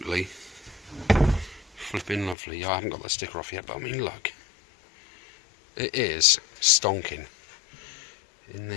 flipping lovely. I haven't got the sticker off yet, but I mean, look, it is stonking in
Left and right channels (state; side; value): drops out; right; at 2.4 s